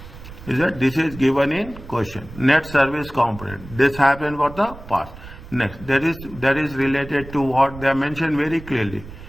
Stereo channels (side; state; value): right; noise; rumble, 16 dB below the sound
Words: Is that this is given in question. Net service component. This happened for the past. Next, that is related to what they mentioned very clearly.